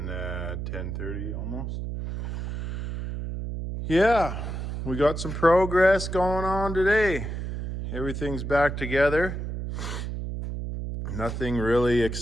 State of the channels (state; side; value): noise; right; hum, 5 dB below the sound